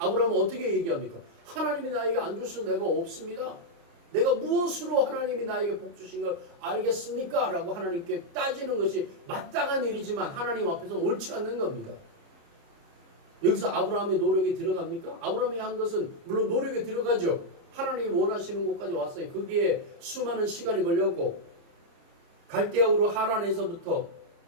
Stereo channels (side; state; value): left; late; 29 ms